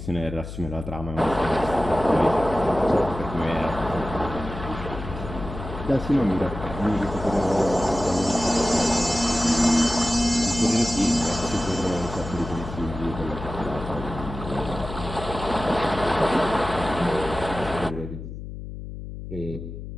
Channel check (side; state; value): left; noise; hum, 10 dB below the sound